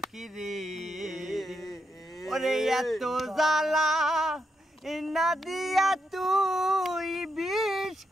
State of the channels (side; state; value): both; normal; correlation 0.82